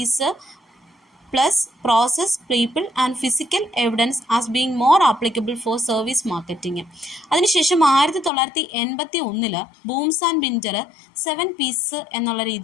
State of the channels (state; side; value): drops out; right; at 8.3 s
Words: plus process, people and physical evidence as being more applicable for service marketing. അതിനുശേഷം 1981 Booms and ബിൻഡർ 7 piece എന്നുള്ള